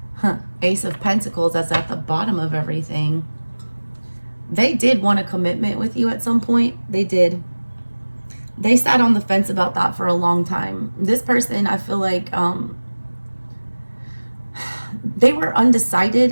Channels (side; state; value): both; inverted; correlation -1.00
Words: Ace of Pentacles, that's at the bottom of everything. They did want a commitment with you at some point. They did. They sat on the fence about that for a long time. This person, I feel like, they were